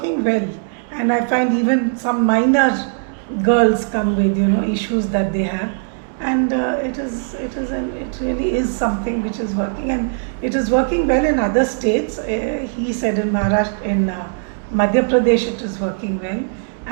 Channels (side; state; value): left; silent; 66 dB below the other